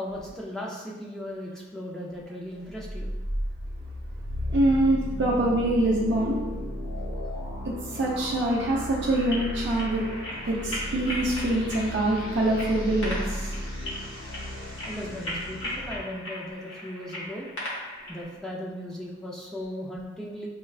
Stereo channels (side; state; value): both; normal; correlation 0.62